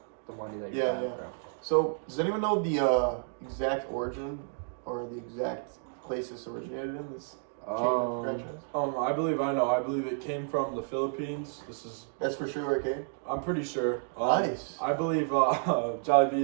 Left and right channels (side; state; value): left; silent; digital silence